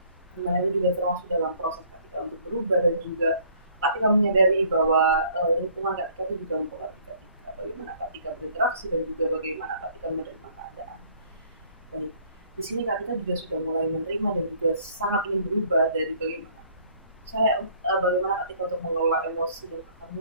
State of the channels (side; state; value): both; inverted; correlation -0.59